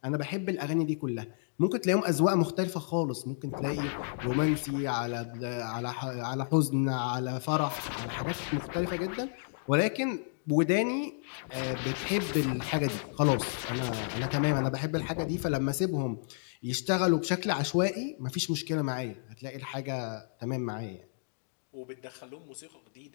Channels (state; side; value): silent; right; digital silence